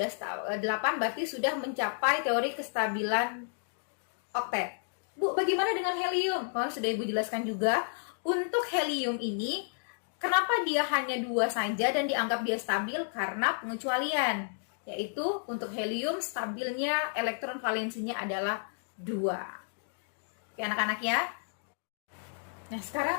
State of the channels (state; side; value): silent; right; digital silence